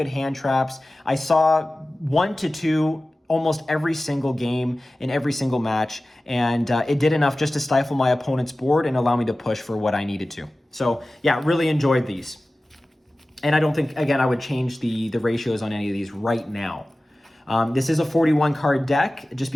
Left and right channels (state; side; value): normal; both; correlation 0.96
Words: hand traps. I saw 1 to 2 almost every single game in every single match, and it did enough just to stifle my opponent's board and allow me to push for what I needed to. So yeah, really enjoyed these. And I don't think, again, I would change the ratios on any of these right now. This is a 41 card deck just